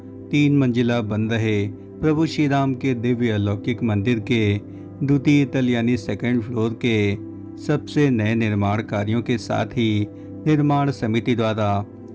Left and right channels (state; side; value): identical; both; correlation 1.00